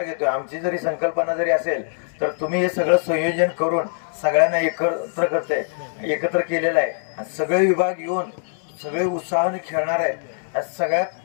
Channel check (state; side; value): silent; right; 64 dB below the other